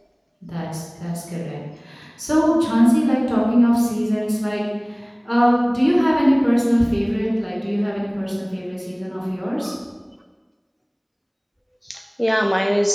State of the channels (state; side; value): identical; both; correlation 1.00